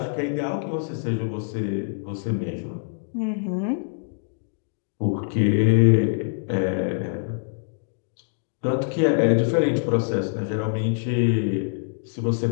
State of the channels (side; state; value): right; silent; digital silence